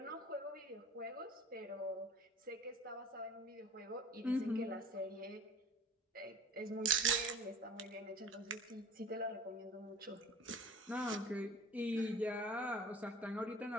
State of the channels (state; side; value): normal; both; correlation 0.41